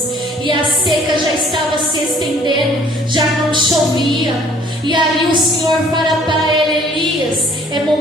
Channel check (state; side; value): normal; both; correlation 0.57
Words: E a seca já estava se estendendo, já não chovia. E ali o Senhor fala para ele: Elias, é